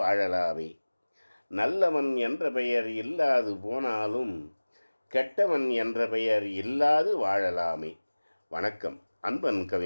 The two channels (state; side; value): inverted; both; correlation -1.00